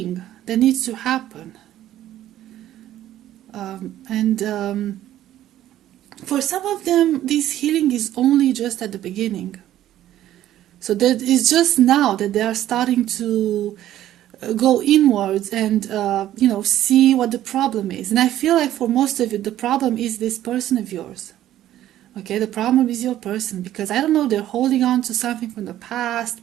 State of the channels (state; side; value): quieter; left; 12.8 dB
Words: that needs to happen. For some of them, this healing is only just at the beginning. So that it's just now that they are starting to go inwards and see what the problem is. And I feel like for most of you, the problem is this person of yours. Okay, the problem is your person, because I don't know, they're holding on to something from the